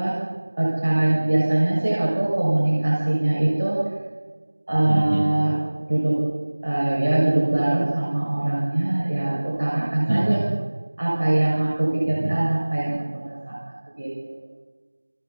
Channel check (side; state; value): both; inverted; correlation -1.00